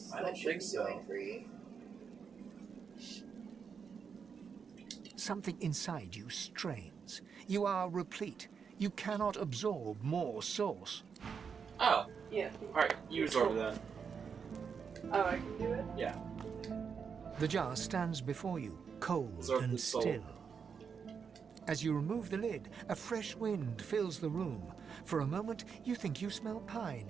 I don't think so. Going free? Something inside you strains. You are replete. You cannot absorb more source. Oh. Yeah. Alright, you absorb it then. Oh, I can do it? Yeah. The jar stands before you, cold Absorb and the soul. still. As you remove the lid, a fresh wind fills the room. For a moment, you think you smell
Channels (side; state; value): left; quieter; 6.3 dB